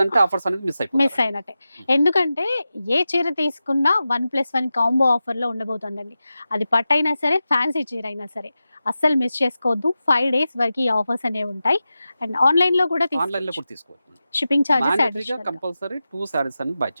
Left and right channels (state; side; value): inverted; both; correlation -0.93